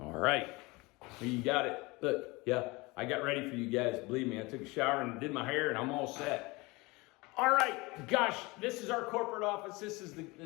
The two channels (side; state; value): right; quieter; 23.9 dB